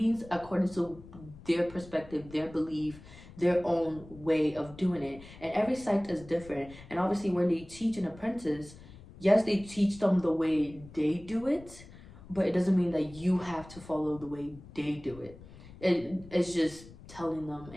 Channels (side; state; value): left; noise; rumble, 19 dB below the sound